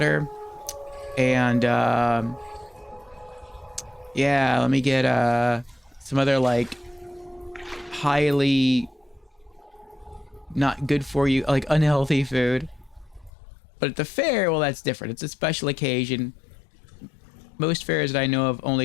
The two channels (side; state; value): right; drops out; at 13.3 s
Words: And, yeah, let me get, some other, like, highly not good for you, like, unhealthy food. But at the fair, well, that's different. It's a special occasion. Most fairs that I know of